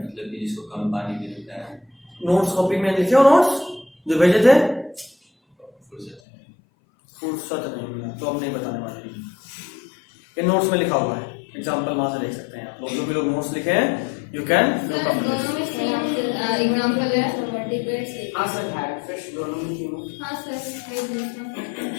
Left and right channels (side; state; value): right; drops out; at 6.2 s